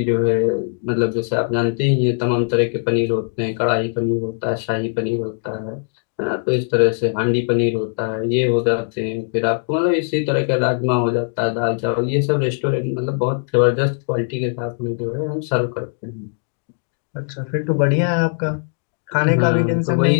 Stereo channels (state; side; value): silent; right; digital silence